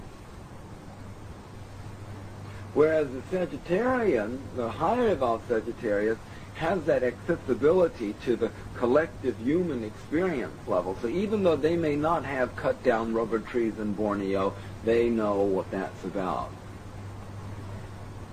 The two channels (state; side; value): identical; both; correlation 1.00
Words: Whereas the Sagittarian, the higher evolved Sagittarius, has that accessibility to the collective human experience level. So even though they may not have cut down rubber trees in Borneo, they know what that's about.